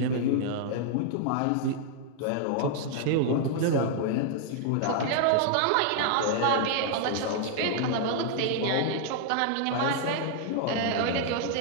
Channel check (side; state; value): both; different; correlation 0.00